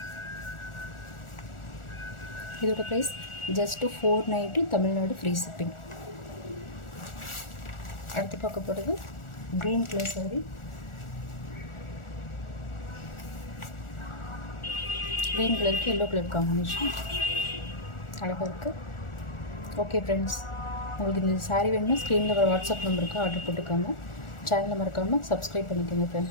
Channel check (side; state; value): right; late; 1.4 ms